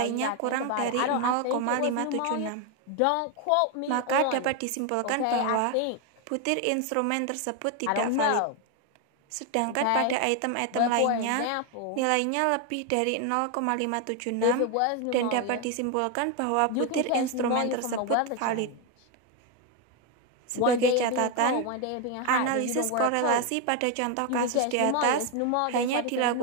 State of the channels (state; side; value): different; both; correlation 0.01